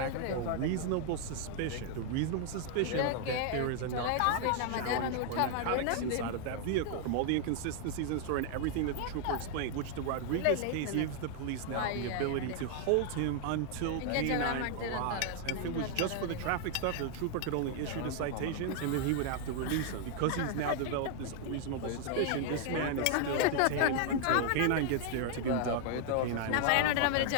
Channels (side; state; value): both; different; correlation 0.00